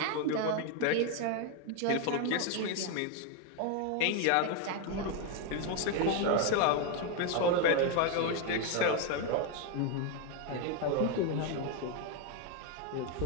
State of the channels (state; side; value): different; both; correlation 0.01